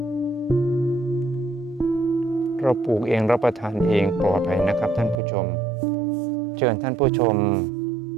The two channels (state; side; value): drops out; left; at 5.2 s